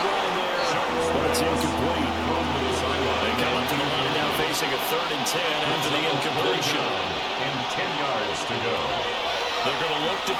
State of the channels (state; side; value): identical; both; correlation 1.00